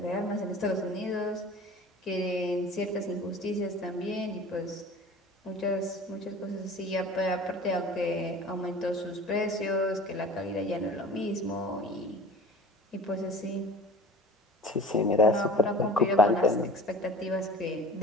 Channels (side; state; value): both; normal; correlation 0.42